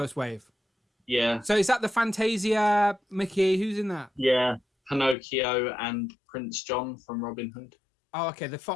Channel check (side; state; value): right; drops out; at 5.2 s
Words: wave. Yeah. So is that the Fantasia Mickey? Who's in that? Yeah. Pinocchio and Prince John from Robin Hood. Oh, okay, the